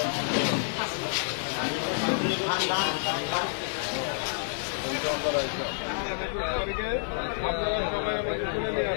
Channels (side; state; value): right; silent; digital silence